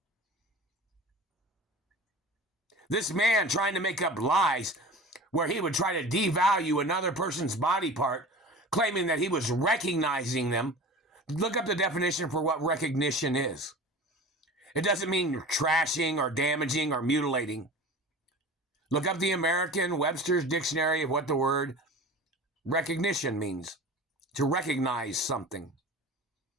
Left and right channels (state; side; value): normal; both; correlation 0.37